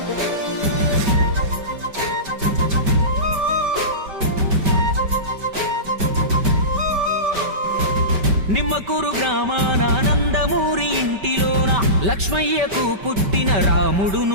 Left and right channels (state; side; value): late; left; 5.2 ms